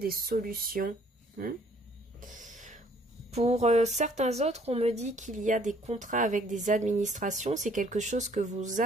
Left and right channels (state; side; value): normal; both; correlation 0.60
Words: solutions. Pour certains autres, on me dit qu'il y a des contrats avec des administrations. C'est quelque chose que vous